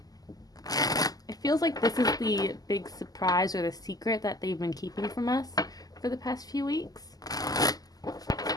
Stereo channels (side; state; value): right; late; 0.18 ms